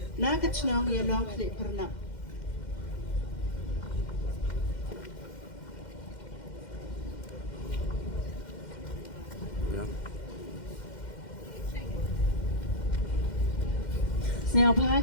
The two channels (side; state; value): right; late; 2.1 ms